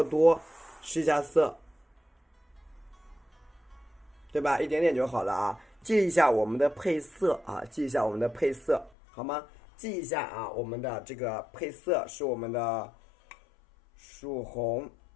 多。试一下色，对吧？一点点就好了啊。记一下我们的配色啊，记一下我们的配色，好吗？记一下啊，我们的这个配色是我们的曙红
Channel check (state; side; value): drops out; right; at 8.9 s